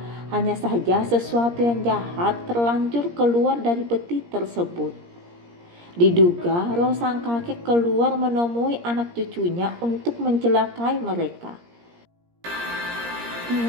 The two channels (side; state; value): left; late; 17 ms